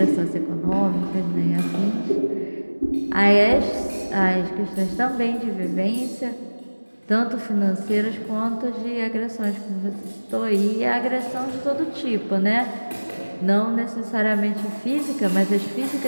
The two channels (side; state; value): both; inverted; correlation -1.00